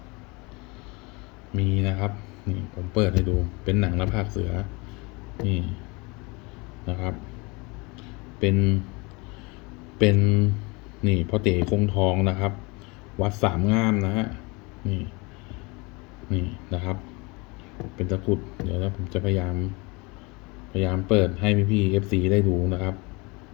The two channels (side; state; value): right; quieter; 27.2 dB